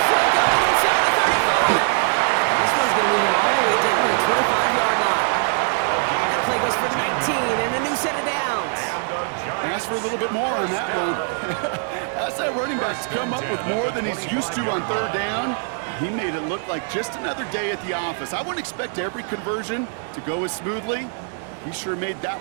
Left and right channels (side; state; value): left; silent; 55 dB below the other